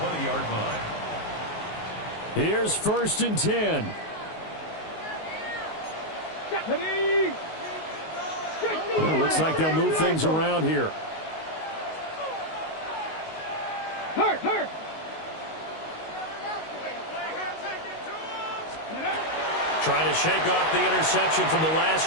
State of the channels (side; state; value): right; late; 19 ms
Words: line. Here's 1st and 10. Well, looks like they'll move things around here. Hurt. Trying to shake off the interception from the